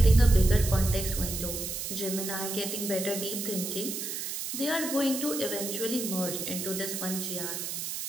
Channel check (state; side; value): noise; right; hiss, 5 dB below the sound